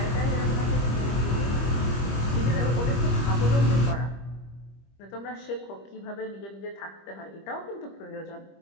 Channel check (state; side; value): late; right; 25 ms